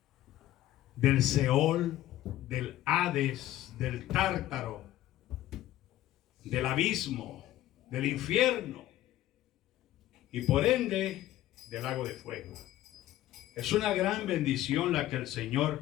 del Seol, del Hades, del Tártaro, del abismo, del infierno y por ende del lago de fuego. Es una gran bendición la que el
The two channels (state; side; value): quieter; right; 14.2 dB